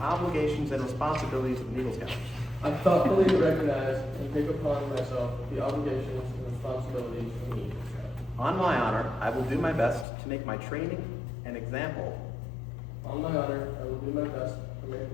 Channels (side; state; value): right; drops out; at 10.1 s